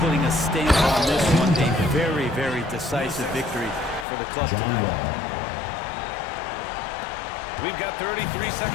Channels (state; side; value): drops out; right; at 4.0 s